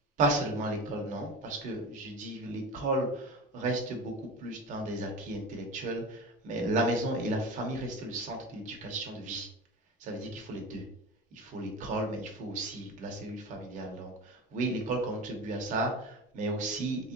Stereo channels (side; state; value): both; normal; correlation 0.30